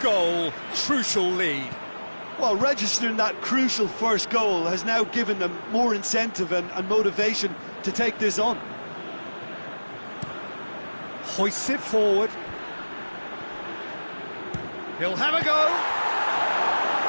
goal, crucial lead. Well, registering that crucial first goal has now given them more incentive and motivation to take this on. Hoists it forward. He'll have a go.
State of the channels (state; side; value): inverted; both; correlation -1.00